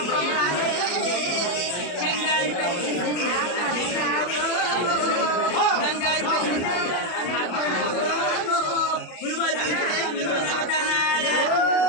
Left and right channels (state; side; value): late; right; 33 ms